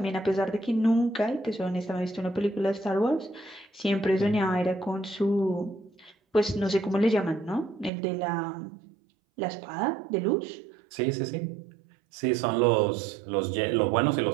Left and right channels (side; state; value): left; drops out; at 7.9 s